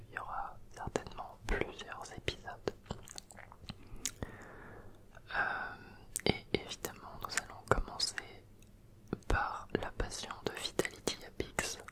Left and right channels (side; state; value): both; identical; correlation 1.00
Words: il y aura certainement plusieurs épisodes. Et évidemment, nous allons commencer par la passion de Vitality Apix,